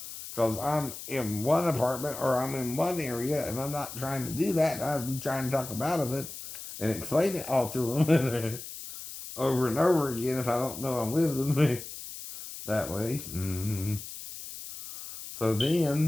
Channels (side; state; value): left; noise; hiss, 11 dB below the sound